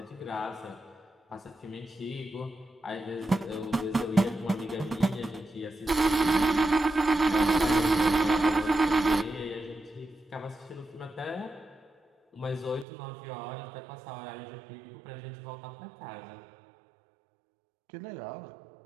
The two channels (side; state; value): left; drops out; at 12.9 s